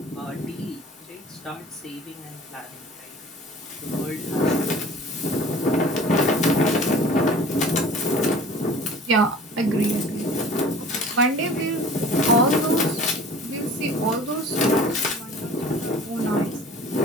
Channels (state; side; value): normal; both; correlation 0.44